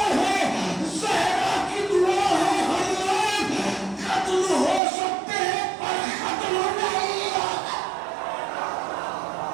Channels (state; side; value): drops out; left; at 4.8 s